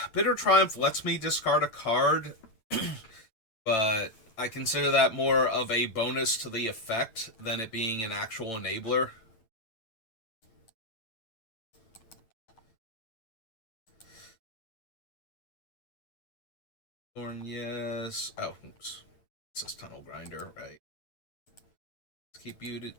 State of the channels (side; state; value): right; late; 9.0 ms